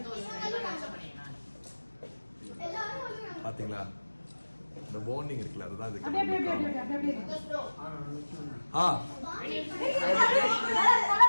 பாத்தீங்களா, இந்த பாண்டிங் இருக்குல்ல, அதுதான் இதுக்கு.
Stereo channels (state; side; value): inverted; both; correlation -1.00